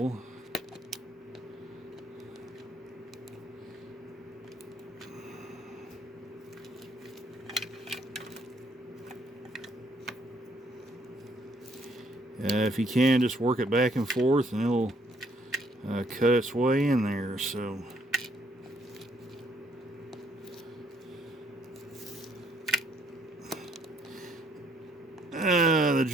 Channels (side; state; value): both; normal; correlation 0.68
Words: If you can, just work it back and forth and it'll cut its way in there. So the